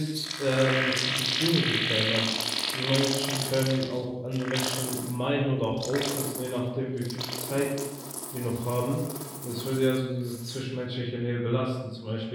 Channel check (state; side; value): identical; both; correlation 1.00